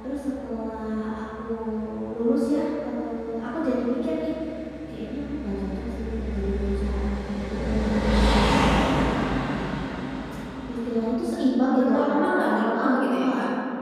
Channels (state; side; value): identical; both; correlation 1.00